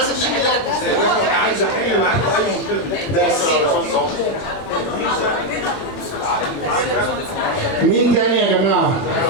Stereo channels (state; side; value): late; right; 21 ms